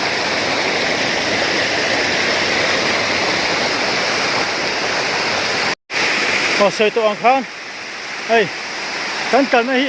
sợi tụ ăn khan hay cái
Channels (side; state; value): both; identical; correlation 1.00